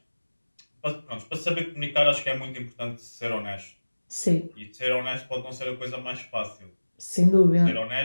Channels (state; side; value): inverted; both; correlation -1.00